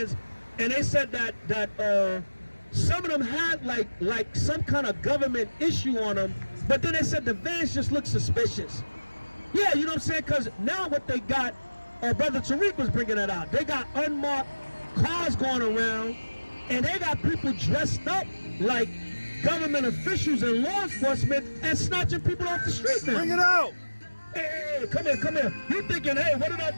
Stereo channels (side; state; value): both; inverted; correlation -1.00